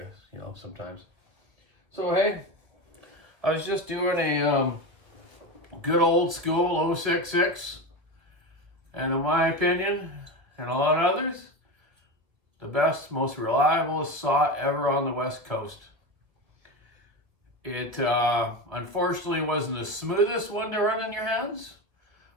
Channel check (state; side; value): late; left; 1.9 ms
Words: sometimes. So, hey, I was just doing a good old school 066. And in my opinion, and a lot of others, the best, most reliable saw ever on the West Coast. It unfortunately wasn't the smoothest one to run in your hands,